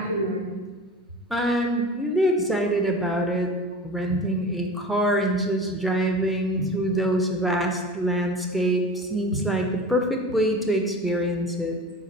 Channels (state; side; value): normal; both; correlation 0.36